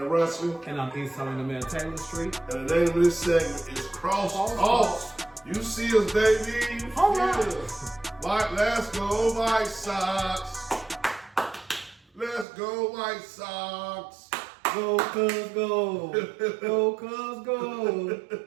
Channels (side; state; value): left; drops out; at 12.5 s